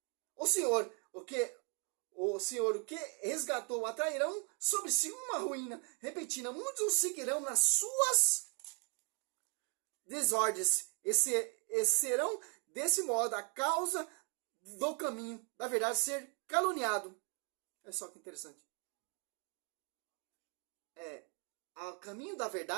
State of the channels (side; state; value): left; quieter; 37.0 dB